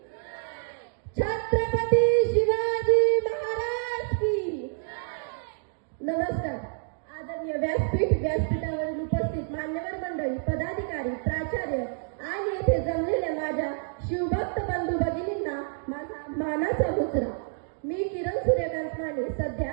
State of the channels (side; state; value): left; silent; digital silence